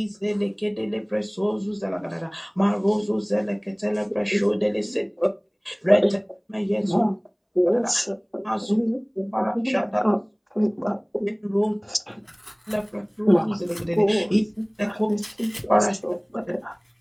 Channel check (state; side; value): identical; both; correlation 1.00